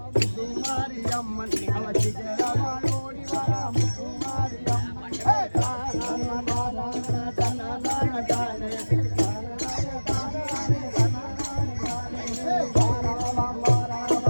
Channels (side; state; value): both; inverted; correlation -1.00